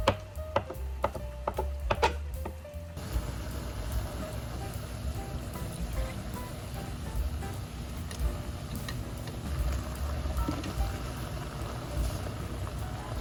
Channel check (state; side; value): identical; both; correlation 1.00